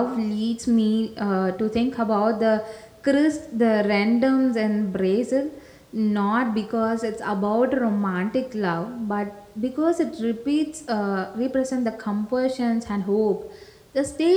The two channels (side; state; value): both; identical; correlation 1.00